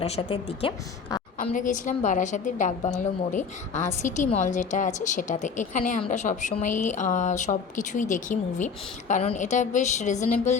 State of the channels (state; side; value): quieter; right; 5.7 dB